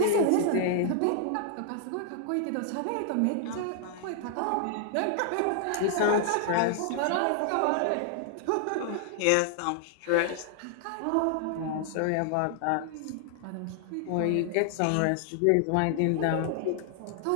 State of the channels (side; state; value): both; different; correlation 0.00